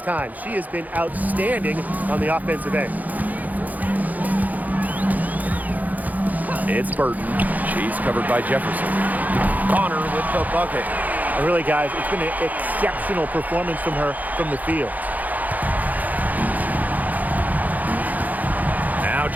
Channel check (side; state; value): left; late; 0.080 ms